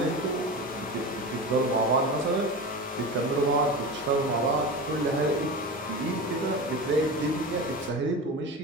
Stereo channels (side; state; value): both; normal; correlation 0.27